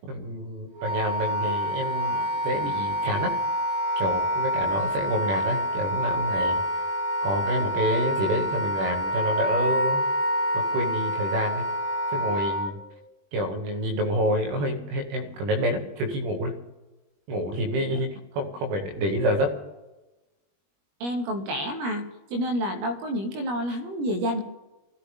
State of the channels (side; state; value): left; late; 21 ms